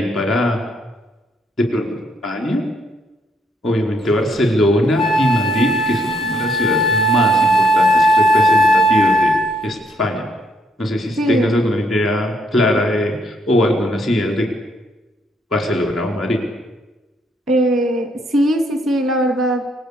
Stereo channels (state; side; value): normal; both; correlation 0.72